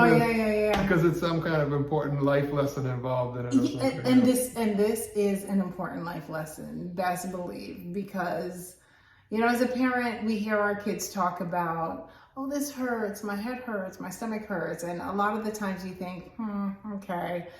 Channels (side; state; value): both; identical; correlation 1.00